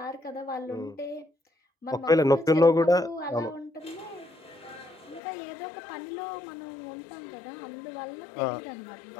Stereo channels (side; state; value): right; drops out; at 5.2 s